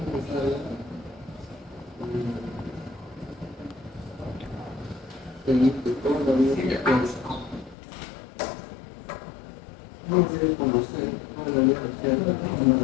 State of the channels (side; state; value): right; drops out; at 7.8 s